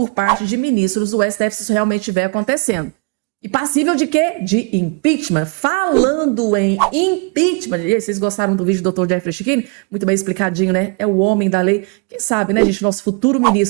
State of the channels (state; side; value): quieter; left; 32.9 dB